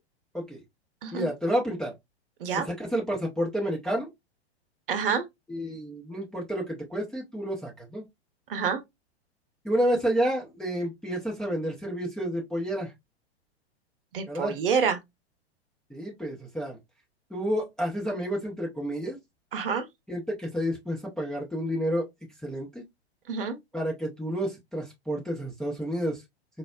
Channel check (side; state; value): both; normal; correlation 0.66